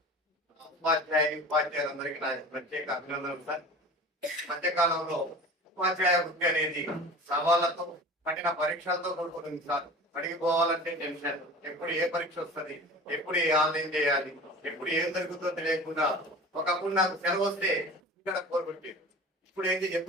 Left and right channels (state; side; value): normal; both; correlation 0.37